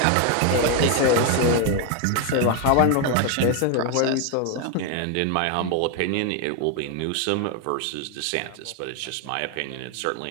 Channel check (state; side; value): different; both; correlation 0.01